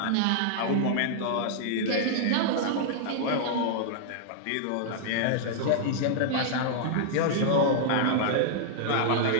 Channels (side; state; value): both; different; correlation -0.01